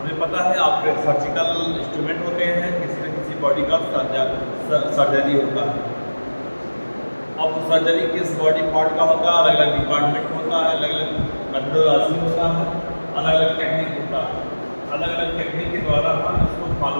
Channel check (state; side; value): inverted; both; correlation -1.00